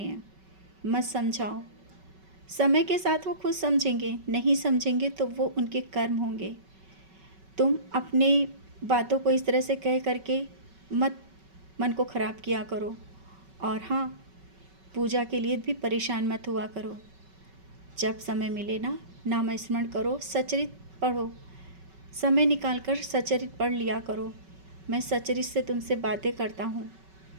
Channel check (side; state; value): left; late; 5.3 ms